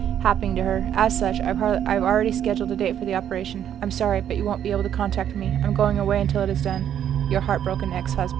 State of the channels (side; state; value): left; quieter; 9.9 dB